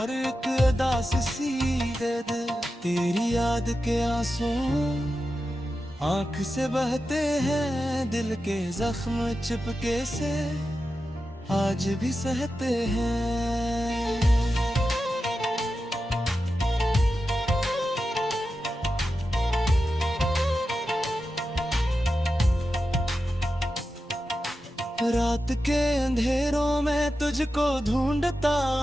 एक अदा प्यास सी दे दे। तेरी याद के आंसू आंख से बहते हैं, दिल के जख्म चिपके से आज भी सहते हैं। रात के अंधेरों में तुझको ढूंढता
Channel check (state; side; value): normal; both; correlation 0.91